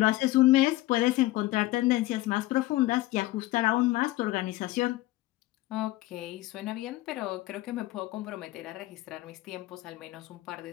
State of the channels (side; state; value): right; quieter; 17.6 dB